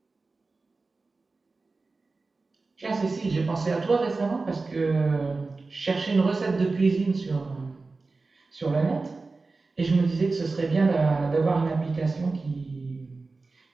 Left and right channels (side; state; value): left; quieter; 3.8 dB